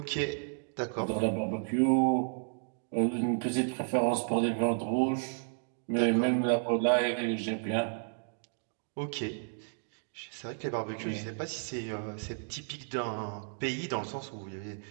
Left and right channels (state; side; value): silent; left; digital silence